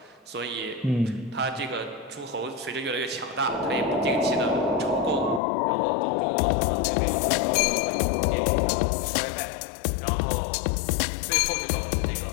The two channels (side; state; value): right; drops out; at 5.4 s